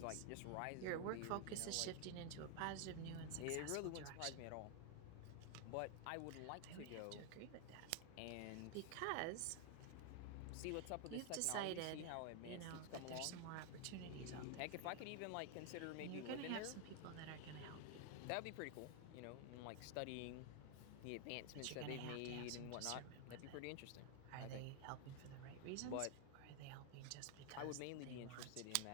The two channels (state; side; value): different; both; correlation 0.00